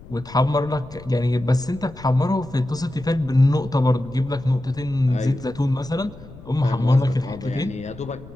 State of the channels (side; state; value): left; noise; rumble, 18 dB below the sound